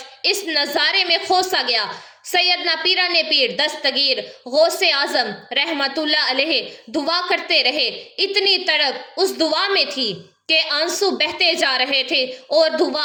اس نظارے میں کھو سا گیا۔ سیدنا پیران پیر دستگیر غوث اعظم رحمت اللہ علیہ دعا کرتے رہے۔ اتنی تڑپ اس دعا میں تھی کہ آنسو بہتے جا رہے تھے اور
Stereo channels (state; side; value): identical; both; correlation 1.00